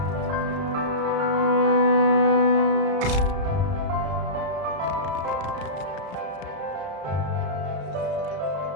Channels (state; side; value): late; left; 34 ms